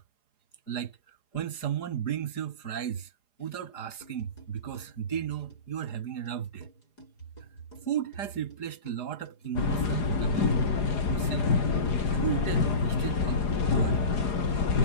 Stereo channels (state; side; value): late; right; 4.9 ms